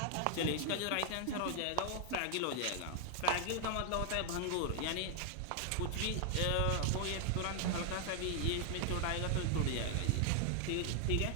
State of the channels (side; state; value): both; different; correlation 0.00